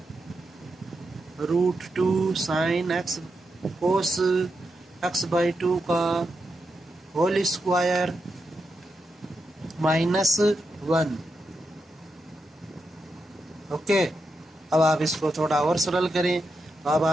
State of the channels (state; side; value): normal; both; correlation 0.86